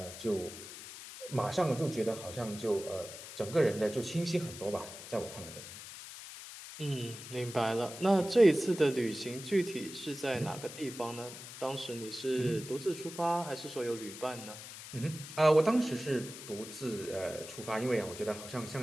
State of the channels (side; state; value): left; noise; hiss, 12 dB below the sound